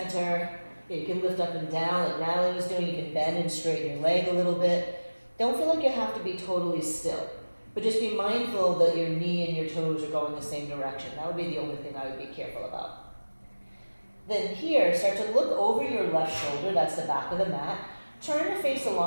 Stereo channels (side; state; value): both; inverted; correlation -1.00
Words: You can lift up and down like Natalie was doing. You can bend and straighten your leg a little bit. Don't feel like you have to be totally still, but just be mindful that your knee and your toes are going the same direction. That would be the only thing I would be careful about. Then here, start to look over your left shoulder, that's the back of the mat. Turn to face the